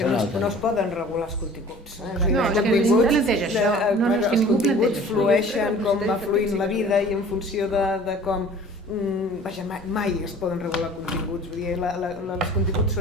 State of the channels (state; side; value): normal; both; correlation 0.47